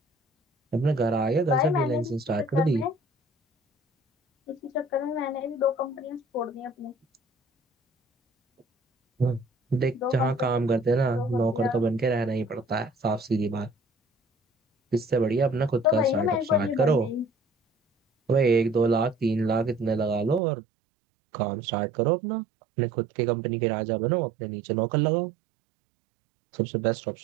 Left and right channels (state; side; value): drops out; left; at 20.4 s